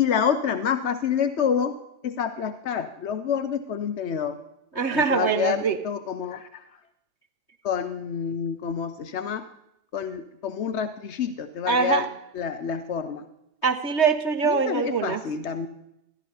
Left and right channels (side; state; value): right; late; 3.2 ms